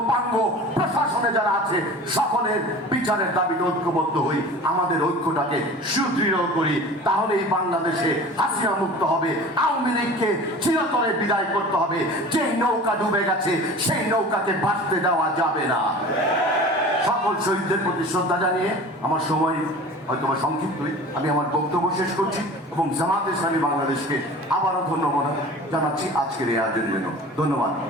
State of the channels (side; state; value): both; normal; correlation 0.39